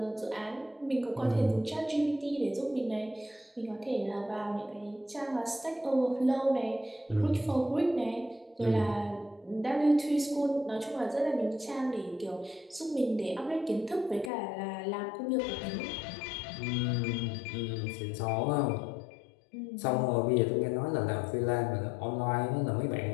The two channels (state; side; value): drops out; right; at 14.3 s